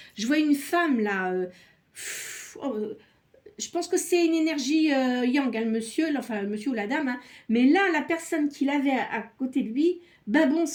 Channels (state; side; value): identical; both; correlation 1.00